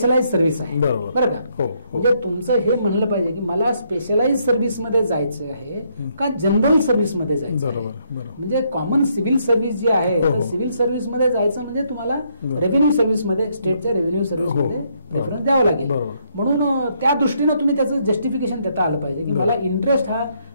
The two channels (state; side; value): inverted; both; correlation -0.73